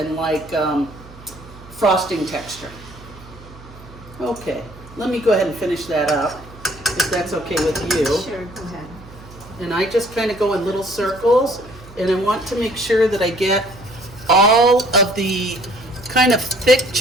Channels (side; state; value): right; noise; hum, 20 dB below the sound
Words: like frosting texture. Okay, let me go ahead and finish that up, if that's okay with you. Sure, go ahead. And I just kind of go in little circles, and I want to make sure that I get all of the kind of thick